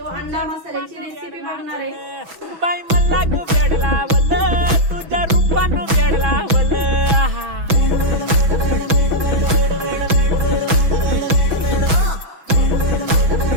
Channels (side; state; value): left; late; 6.1 ms